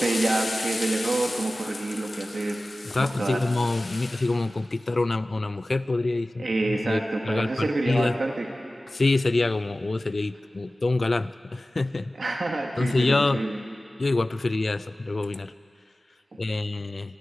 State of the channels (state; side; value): normal; both; correlation 0.96